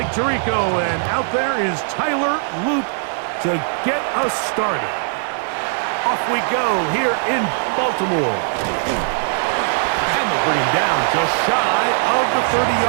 Tirico, and out there is Tyler Loop to get us started. Off we go here in Baltimore. And they'll bring him down just shy of the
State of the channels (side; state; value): left; silent; digital silence